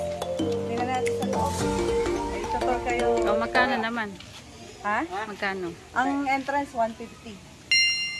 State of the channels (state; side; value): identical; both; correlation 1.00